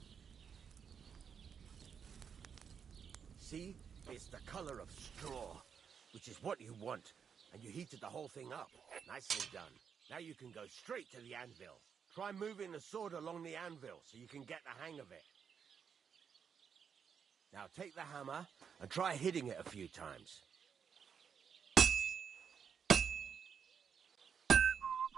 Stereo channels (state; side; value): quieter; left; 7.0 dB